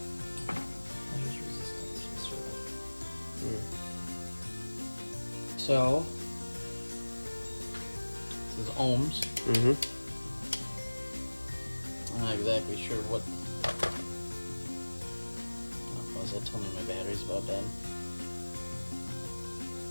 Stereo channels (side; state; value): both; inverted; correlation -1.00